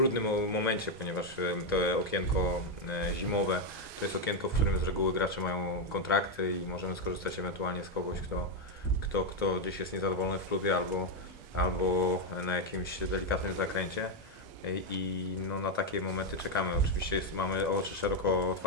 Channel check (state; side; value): normal; both; correlation 0.03